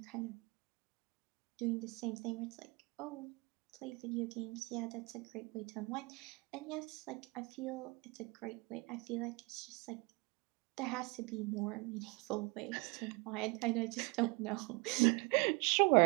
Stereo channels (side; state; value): left; quieter; 27.7 dB